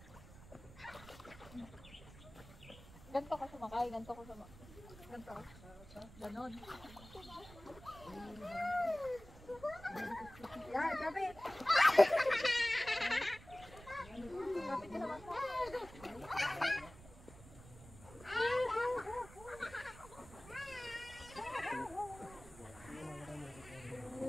Ganto ka sumakay. Ganto ka sumakay. Ganto ka. Ganon. Yan, kapit. Kapit ka sa bangka.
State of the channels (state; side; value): noise; right; rumble, 18 dB below the sound